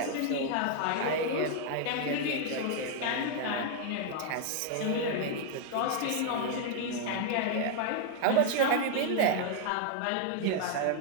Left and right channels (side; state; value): both; different; correlation 0.00